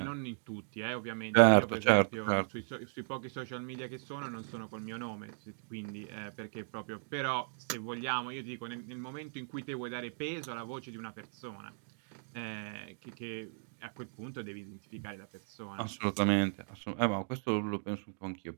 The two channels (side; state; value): left; silent; digital silence